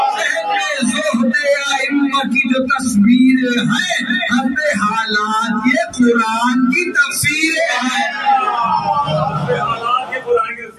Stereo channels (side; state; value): both; identical; correlation 1.00